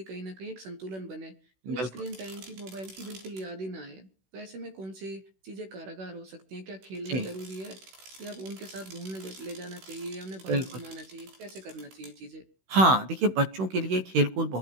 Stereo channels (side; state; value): left; late; 16 ms